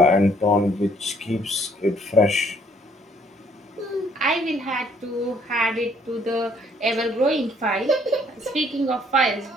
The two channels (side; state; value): both; normal; correlation 0.64